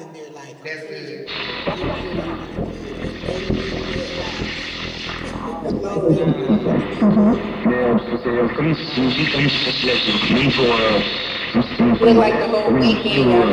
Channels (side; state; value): both; identical; correlation 1.00